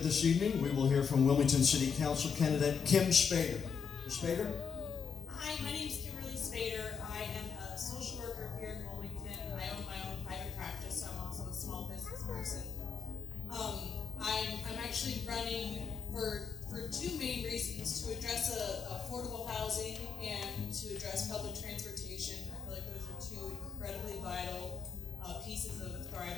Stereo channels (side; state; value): right; quieter; 6.4 dB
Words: this evening, we will hear from Wilmington City Council candidate Kim Spader. Ms. Spader? Hi, my name is Kimberly Spader. I am a social worker here in Wilmington. I own my own private practice, so I'm also a small business person. I'm actually running for two main reasons: to address affordable housing and to address public transportation. I feel like those are two incredibly vital pieces of a